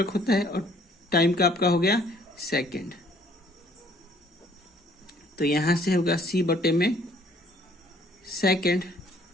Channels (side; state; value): both; normal; correlation 0.60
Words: होता है। और टाइम का आपका हो गया सेकेंड। तो यहां से होगा C बटे में सेकेंड,